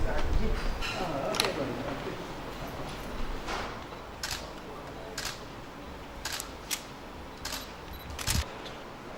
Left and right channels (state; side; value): identical; both; correlation 1.00